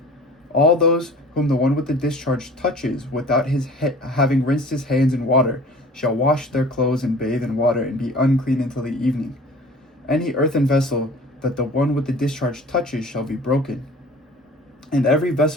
All those whom the one with the discharge touches without his having rinsed his hands in water shall wash their clothes and bathe in water and be unclean until the evening. Any earthen vessel that the one with the discharge touches shall be broken, and every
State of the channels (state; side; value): normal; both; correlation 0.44